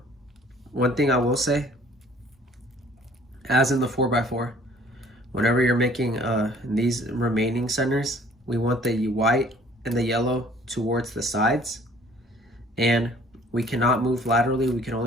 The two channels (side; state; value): both; normal; correlation 0.55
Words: one thing I will say, as in the 4x4, whenever you're making these remaining centers, we want the white and the yellow towards the sides, and we cannot move laterally, we can